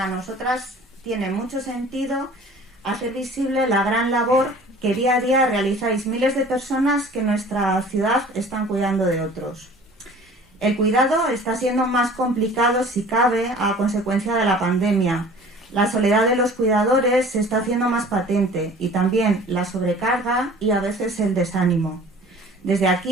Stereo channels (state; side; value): normal; both; correlation 0.46